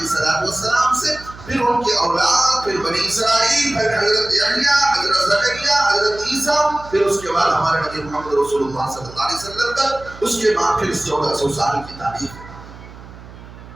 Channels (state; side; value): noise; right; hum, 17 dB below the sound